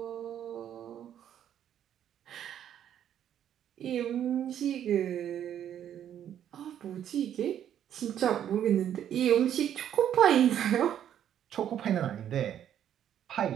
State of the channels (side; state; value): left; quieter; 10.1 dB